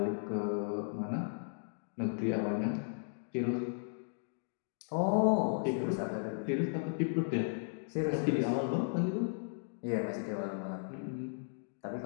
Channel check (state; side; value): silent; right; digital silence